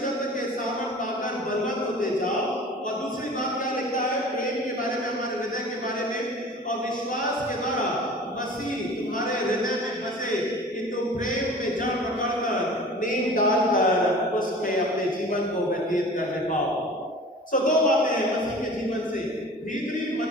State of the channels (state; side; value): normal; both; correlation 0.42